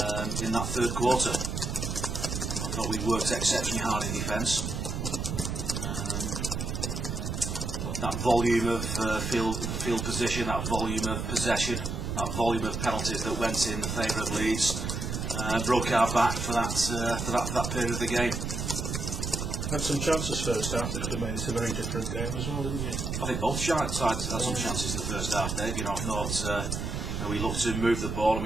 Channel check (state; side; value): noise; right; rumble, 3 dB below the sound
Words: in that third quarter. I thought we worked exceptionally hard in defence. That volume of field position, that volume of possession, that volume of penalties that went in the favour of Leeds broke our back for that period of the game. Had some chances first half that could have made it a very different game as well, didn't you? I think both sides had some chances in the first half, Dave. You know, I thought we looked to move the ball and